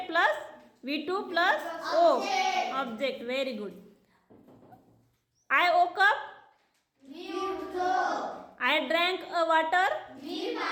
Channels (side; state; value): both; identical; correlation 1.00